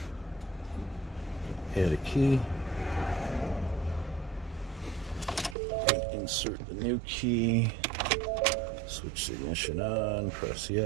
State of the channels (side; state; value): left; drops out; at 5.6 s